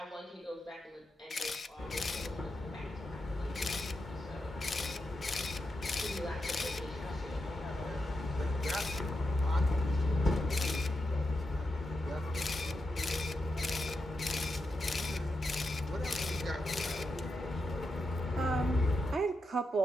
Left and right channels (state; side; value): normal; both; correlation 0.87